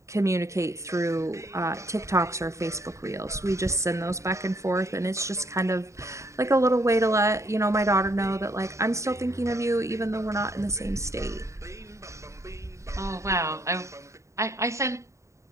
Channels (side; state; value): left; late; 0.14 ms